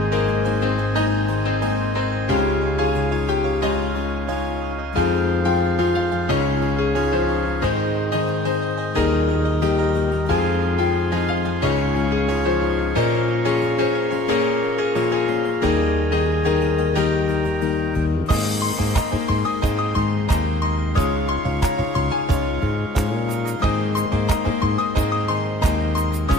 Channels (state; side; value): normal; both; correlation 0.53